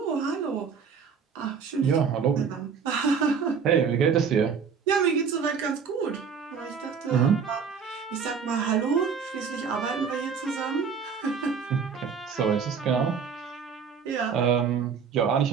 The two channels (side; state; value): left; quieter; 6.3 dB